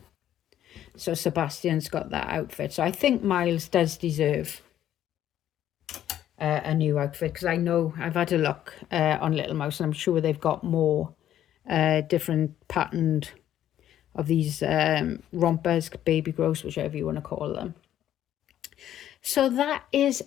So Sebastian's got that outfit. So I think Miles does deserve a new outfit, because I know I've had a look on Little Mouse, and I'm sure they've got more different patterned of these rompers, baby grows, whichever you want to call them. So that is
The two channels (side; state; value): right; quieter; 11.5 dB